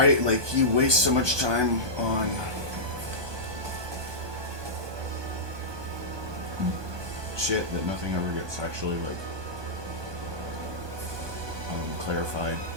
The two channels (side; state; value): left; late; 1.2 ms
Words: Like, you waste so much time on shit that nothing ever gets actually, like, clarified.